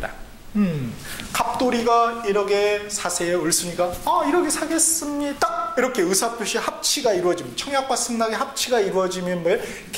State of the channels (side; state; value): both; identical; correlation 1.00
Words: 갑돌이가 1억에 사세요. 을순이가 1억에 사겠습니다. 이렇게 의사표시 합치가 이루어지면, 청약과 승낙의 합치가 이루어지면 뭐예요?